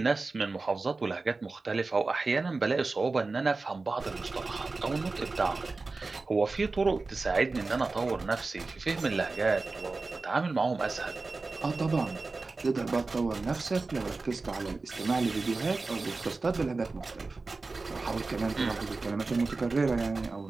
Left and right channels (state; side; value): quieter; left; 3.7 dB